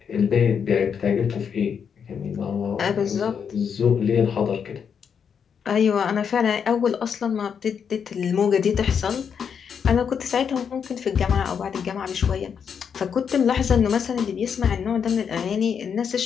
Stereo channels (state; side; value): quieter; right; 7.1 dB